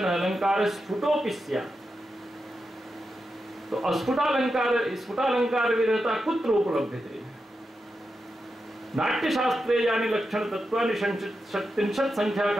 अलंकार स्फुटोपि स्यात्। तो स्फुटालंकार विरहता कुत्र उपलभ्यते? नाट्यशास्त्रे यानि लक्षण तत्वानि 37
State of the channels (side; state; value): both; normal; correlation 0.88